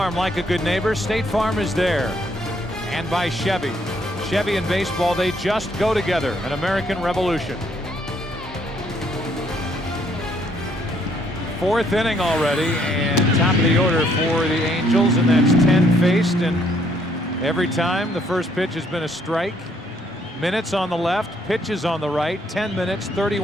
like a good neighbor, State Farm is there. And by Chevy. Chevy and baseball, they just go together. An American Revolution. Fourth inning already, and top of the order for the Angels, and that's 10 faced, and every time the first pitch has been a strike. Minutes on the left, pitches on the right, 10 minutes,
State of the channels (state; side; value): normal; both; correlation 0.68